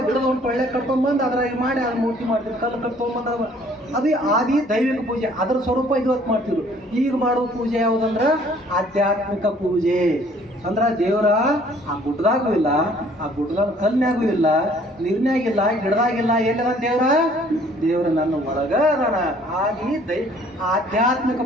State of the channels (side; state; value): both; normal; correlation 0.58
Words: ಗಿಡದ ಒಂದು ಟೊಳ್ಳೆ ಕಟ್ಕೊಂಬಂದು ಅದ್ರಾಗ ಮಾಡಿ ಅದು ಮೂರ್ತಿ ಮಾಡ್ತಿದ್ವಿ. ಕಲ್ಲು ಕಟ್ಕೊಂಬಂದು ಅದು ಆದಿ ದೈವಿಕ ಪೂಜೆ. ಅದರ ಸ್ವರೂಪ ಇವತ್ತು ಮಾಡ್ತಿದ್ರು. ಈಗ ಮಾಡೋ ಪೂಜೆ ಯಾವುದಂದ್ರೆ ಆಧ್ಯಾತ್ಮಿಕ ಪೂಜೆ. ಅಂದ್ರೆ ದೇವರ ಆ ಗುಡ್ಡದಾಗೂ ಇಲ್ಲ, ಆ ಗುಡ್ಡದಾಗ ಕಲ್ನಾಗೂ ಇಲ್ಲ, ನೀರ್ನಾಗಿಲ್ಲ, ಗಿಡದಾಗಿಲ್ಲ. ಎಲ್ಲಿದ ದೇವರ ನನ್ನ ಒಳಗ ಅದಾನ. ಆದಿ ಆಧ್ಯಾತ್ಮಿಕ